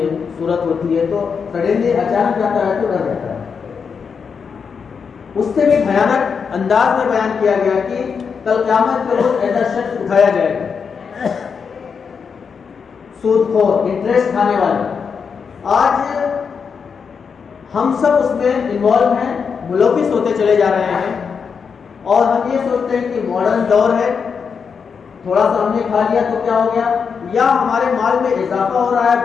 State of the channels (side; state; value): right; quieter; 6.1 dB